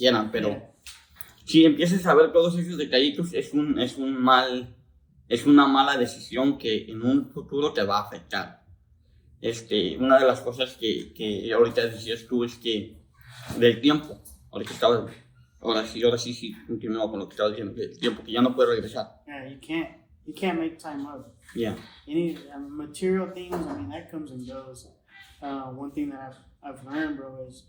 pero si empiezas a ver todos esos detallitos, es una mala decisión que en un futuro te va a afectar. Una de las cosas que ahorita decías tú es que del tiempo, ahora sí continúo con lo que estaba diciendo, del tiempo que ya no puedo regresar. Yeah, you can't make time up. Yeah. Any material things, that comes and goes. One thing that I've learned, bro,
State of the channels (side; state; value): both; identical; correlation 1.00